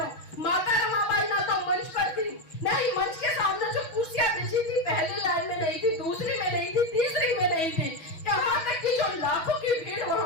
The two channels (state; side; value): late; right; 6.2 ms